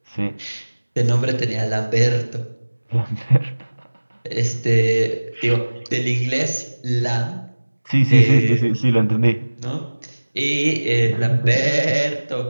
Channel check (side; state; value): both; inverted; correlation -1.00